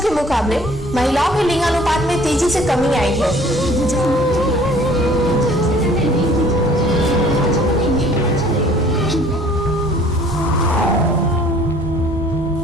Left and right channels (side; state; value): both; normal; correlation 0.54